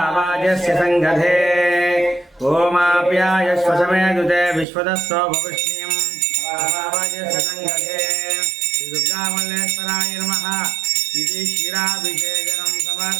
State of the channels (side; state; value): left; drops out; at 4.7 s